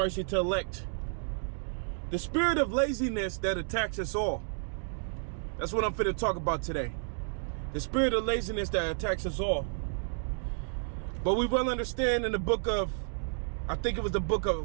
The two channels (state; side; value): silent; left; digital silence